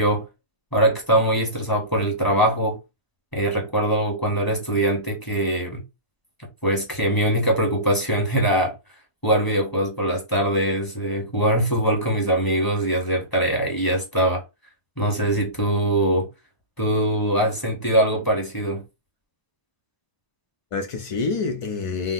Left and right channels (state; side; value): late; right; 1.0 ms